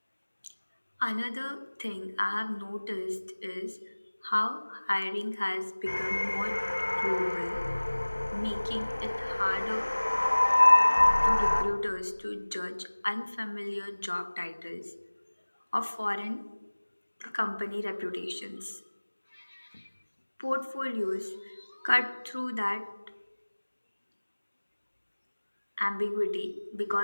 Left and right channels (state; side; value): inverted; both; correlation -1.00